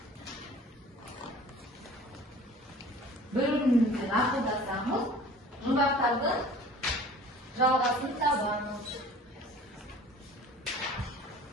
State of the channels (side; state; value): both; normal; correlation 0.46